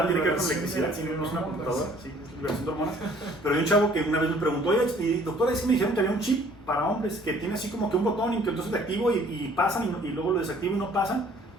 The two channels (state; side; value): normal; both; correlation 0.57